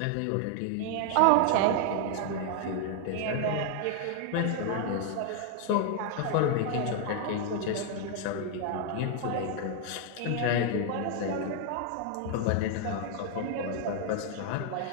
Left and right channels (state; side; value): different; both; correlation 0.00